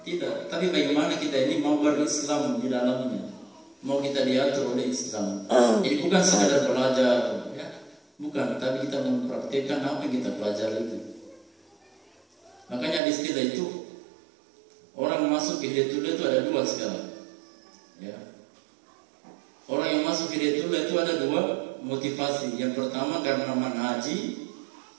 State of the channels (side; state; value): left; drops out; at 13.0 s